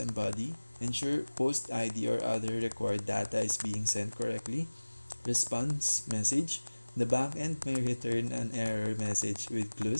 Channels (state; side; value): inverted; both; correlation -1.00